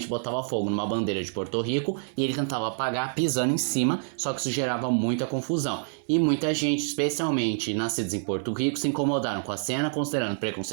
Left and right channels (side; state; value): left; silent; 59 dB below the other